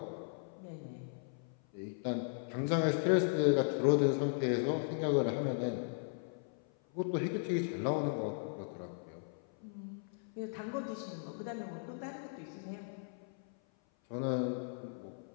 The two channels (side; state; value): right; silent; 53 dB below the other